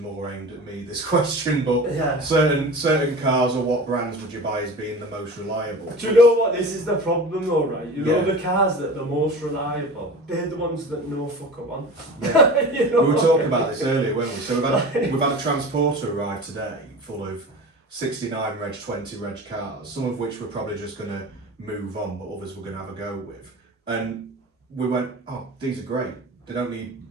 aimed at me, this question, but Yeah. certain cars or what brands would you buy as being the most reliable? Do you know what? This is the problem though, right? You know Yeah. the cars that are the most reliable, they're the ones that no fucker want. Yeah. You know We were what I talking mean? about this earlier, weren't we? So we've had a transporter arrive today full of 69 reg, 20 reg cars, some of which we're probably just going to move on, but others we're going to have a go with. And we went, oh, these are great. They don't need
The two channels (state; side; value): normal; both; correlation 0.34